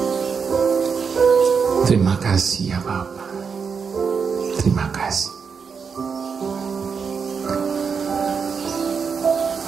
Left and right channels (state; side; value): quieter; left; 6.0 dB